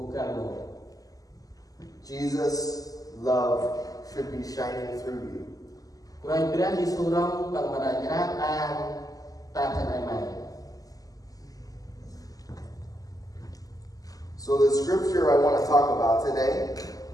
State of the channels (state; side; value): late; right; 0.17 ms